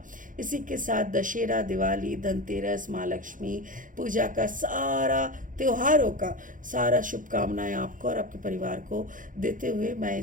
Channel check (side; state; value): left; late; 0.38 ms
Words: इसी के साथ दशहरा, दिवाली, धनतेरस, माँ लक्ष्मी पूजा का सारा त्योहारों का सारा शुभकामनाएं आपको और आपके परिवार को देते हुए मैं